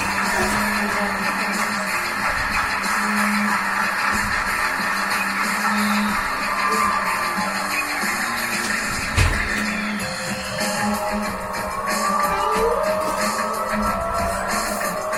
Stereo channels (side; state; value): both; identical; correlation 1.00